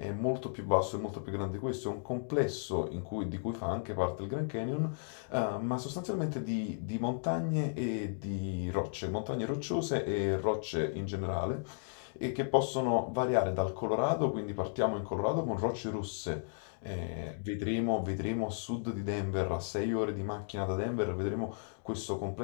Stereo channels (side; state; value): right; silent; digital silence